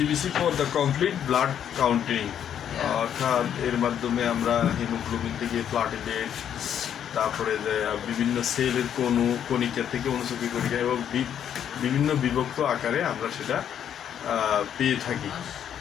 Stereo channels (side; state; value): right; quieter; 9.3 dB